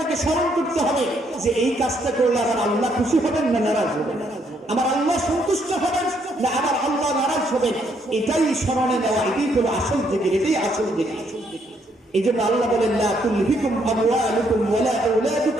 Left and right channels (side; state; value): both; normal; correlation 0.71